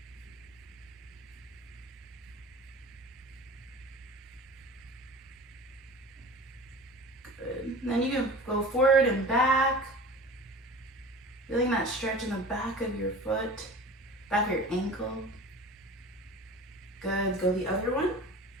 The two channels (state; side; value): normal; both; correlation 0.38